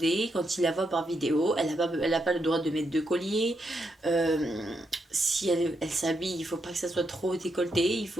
quand il la voit par vidéo, elle a pas le droit de mettre de collier. Euh, si elle s'habille, il faut pas que ça soit trop décolleté, il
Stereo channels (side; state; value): both; normal; correlation 0.81